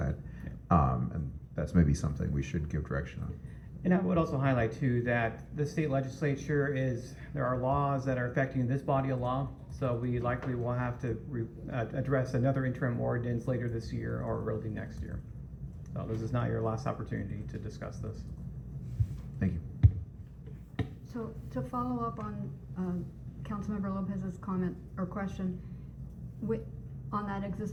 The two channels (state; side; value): identical; both; correlation 1.00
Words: And that's maybe something we should give direction on. And I would also highlight too that the state legislature there are laws that are affecting this body of law. So we likely will have to address another interim ordinance later this year or early next year. So this is not your last opportunity to discuss this. Thank you. So to follow up on Councilmember Lopez's comment or question on that